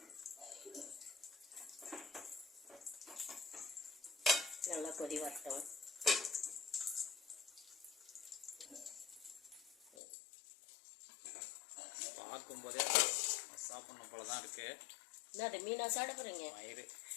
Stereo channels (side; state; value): right; drops out; at 9.9 s